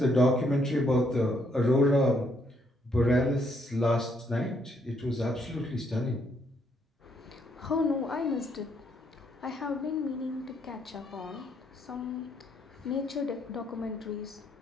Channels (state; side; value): normal; both; correlation 0.72